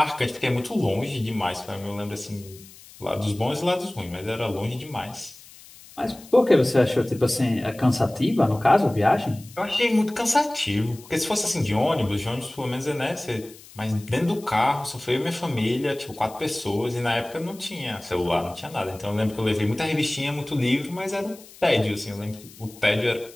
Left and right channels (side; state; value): left; noise; hiss, 21 dB below the sound